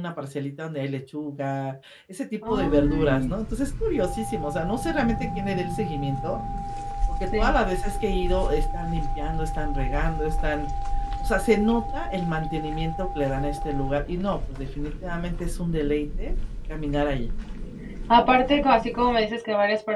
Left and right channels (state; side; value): identical; both; correlation 1.00